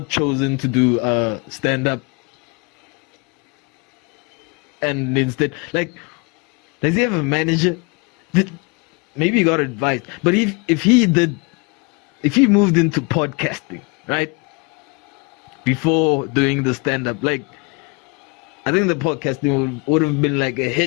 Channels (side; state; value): right; quieter; 30.8 dB